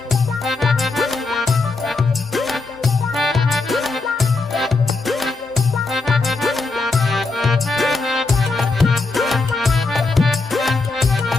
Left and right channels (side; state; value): right; quieter; 3.6 dB